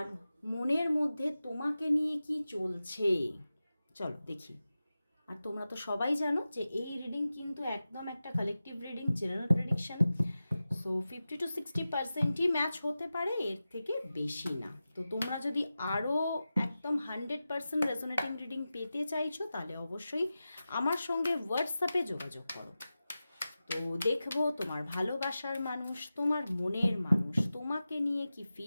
মনের মধ্যে তোমাকে নিয়ে কি চলছে। চলো দেখি। আর তোমরা তো সবাই জানো যে এই রিডিং কিন্তু একদম একটা collective reading, general prediction. So 50-60%ই ম্যাচ হতে পারে, এর থেকে বেশি না। তো তোমরা যদি আরও একদম 100% রেজোনেটিং রিডিং পেতে চাইছো তাহলে অবশ্যই আমার সঙ্গে হোয়াটসঅ্যাপে যোগাযোগ করো। তো দেখবো তোমার ভালোবাসার মানুষ, তোমার মনের মানুষ তোমাকে নিয়ে কি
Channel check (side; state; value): both; inverted; correlation -0.94